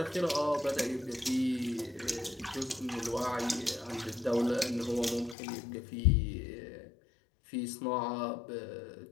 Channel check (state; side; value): drops out; right; at 5.4 s